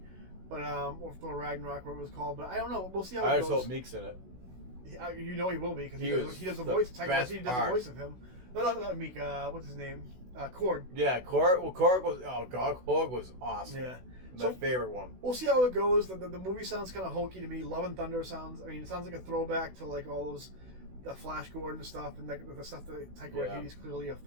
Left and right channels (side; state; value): left; late; 16 ms